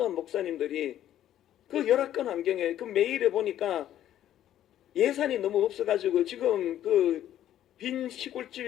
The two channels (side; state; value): right; quieter; 11.8 dB